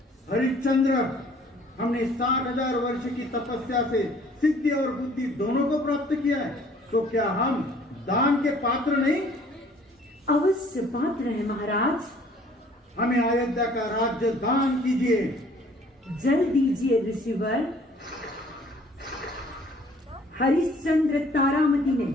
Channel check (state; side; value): normal; both; correlation 0.56